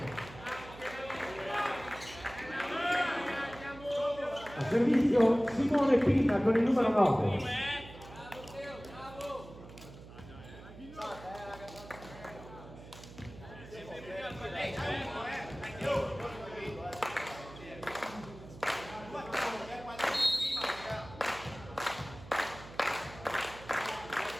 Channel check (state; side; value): noise; right; hum, 16 dB below the sound